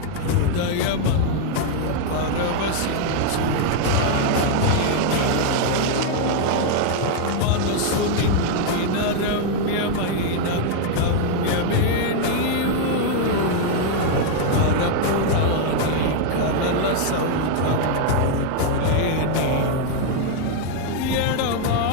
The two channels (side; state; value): both; different; correlation 0.00